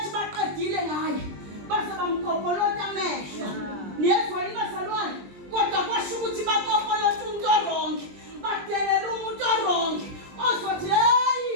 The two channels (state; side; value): late; left; 20 ms